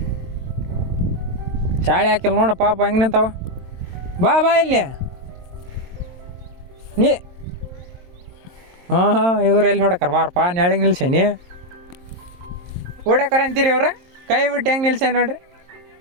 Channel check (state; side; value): late; left; 23 ms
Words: ಚಾಳೆ ಹಾಕಿಲ್ಲ ನೋಡ ಪಾಪ ಹೆಂಗೆ ನಿಂತಾವ. ಬಾ ಇಲ್ಲಿ ನೀ. ಇವ್ರು ಎಲ್ಲಿ ಹೊಡಕರ ಬಾರಪ್ಪ, ನೆಳಗೆ ನಿಲ್ಸೇನಿ. ಓಡಾಕರ ಅಂತೀರಿ ಅವ್ರ, ಕೈ ಬಿಟ್ಟು ಹೆಂಗೆ ನಿಲ್ಸೇ ನೋಡ್ರಿ.